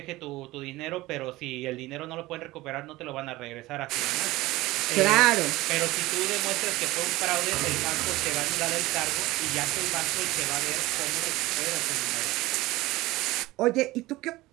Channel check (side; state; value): left; quieter; 18.7 dB